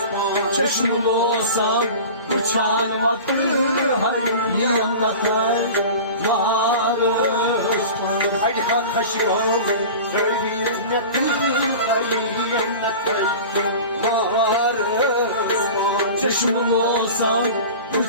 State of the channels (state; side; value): inverted; both; correlation -0.35